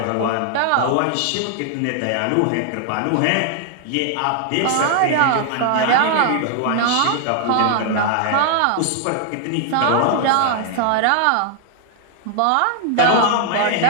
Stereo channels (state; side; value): different; both; correlation 0.00